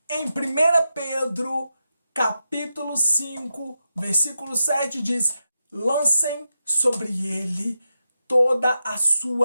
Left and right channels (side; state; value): both; inverted; correlation -0.88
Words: Em 1 Pedro, capítulo 5, versículo 7 diz: lancem sobre ele toda a